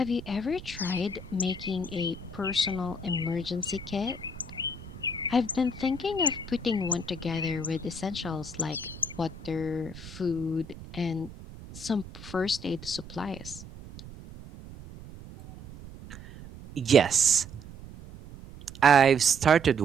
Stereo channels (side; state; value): right; noise; rumble, 15 dB below the sound